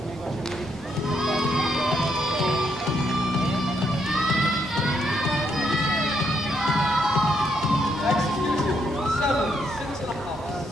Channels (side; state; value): both; normal; correlation 0.76